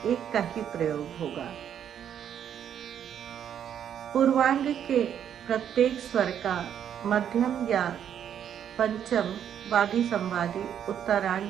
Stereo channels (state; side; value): quieter; left; 9.2 dB